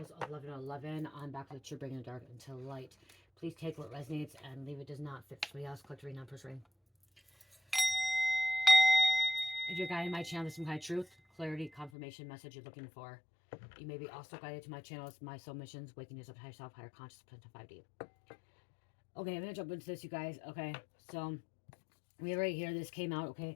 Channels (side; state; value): right; drops out; at 11.9 s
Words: 1111. I'm back with you, bringing the dark into light. Please take what resonates and leave it does not fit somebody else. Collect reading, non-first reading. If you're guided my channel to some kind of truth, clarity, confirmation, message you're looking for, you may be also guided to my channels, My Soul Missions, Waking Yourself to Higher Self, Higher Consciousness, to 5D. Okay, I'm going to jump into this, you guys. Okay, so we right here, this came out,